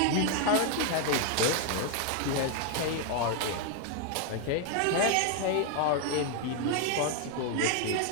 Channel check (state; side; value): different; both; correlation 0.00